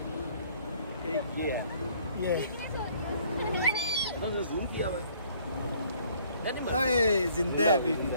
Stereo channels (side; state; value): both; inverted; correlation -0.60